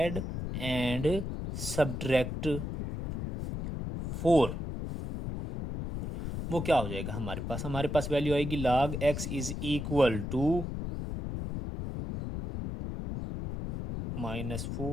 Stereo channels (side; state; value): left; noise; rumble, 5 dB below the sound